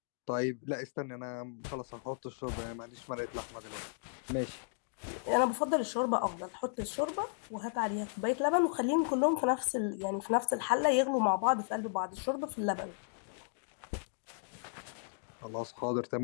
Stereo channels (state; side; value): silent; right; digital silence